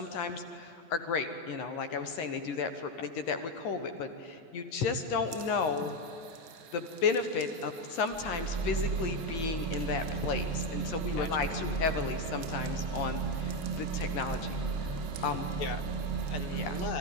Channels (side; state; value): right; late; 12 ms